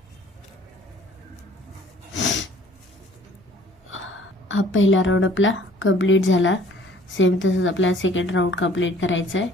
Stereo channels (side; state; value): both; normal; correlation 0.54